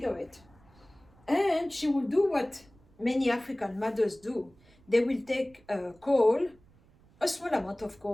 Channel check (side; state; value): right; noise; rumble, 29 dB below the sound